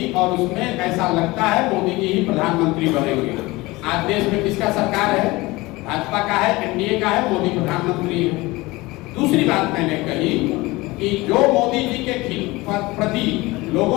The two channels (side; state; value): right; quieter; 21.4 dB